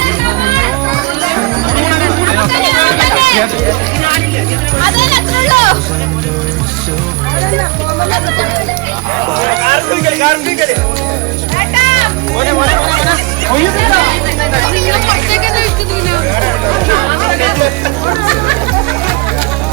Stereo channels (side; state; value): left; quieter; 24.8 dB